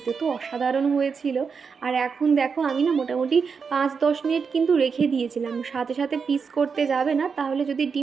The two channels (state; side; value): quieter; left; 5.7 dB